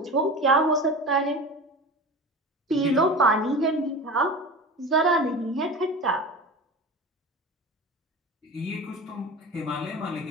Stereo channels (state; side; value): normal; both; correlation 0.31